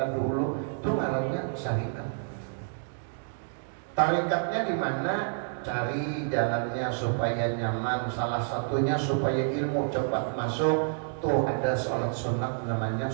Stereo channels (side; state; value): left; silent; digital silence